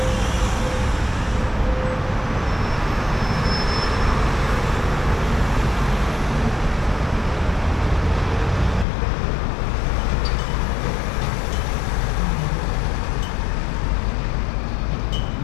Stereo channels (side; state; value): right; drops out; at 8.8 s